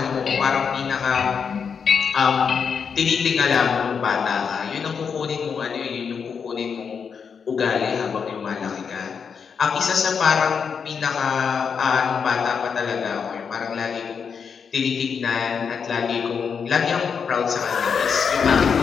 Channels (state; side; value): quieter; right; 6.4 dB